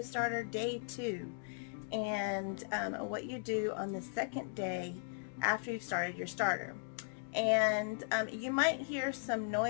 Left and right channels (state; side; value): silent; right; digital silence